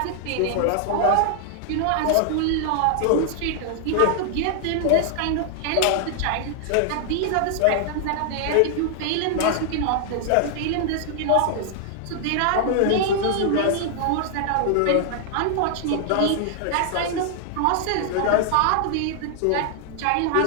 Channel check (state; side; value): different; both; correlation 0.00